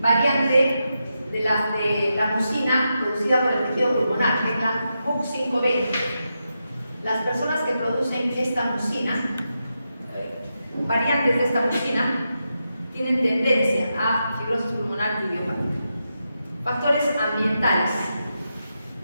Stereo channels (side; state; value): both; inverted; correlation -0.87